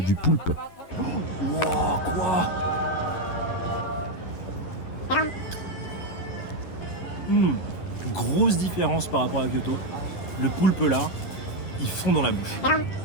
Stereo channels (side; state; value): right; late; 11 ms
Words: poulpe. Wow, quoi? Grosse différence par rapport à Kyoto. Le poulpe là, il fond dans la bouche.